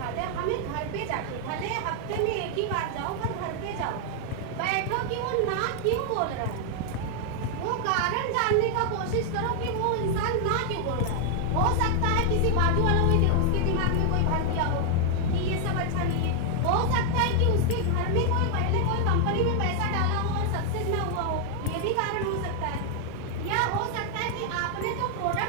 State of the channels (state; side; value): different; both; correlation 0.00